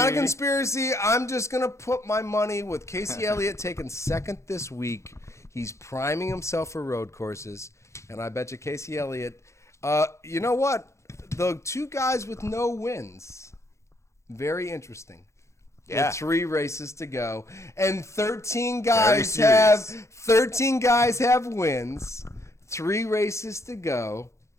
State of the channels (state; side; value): late; right; 0.14 ms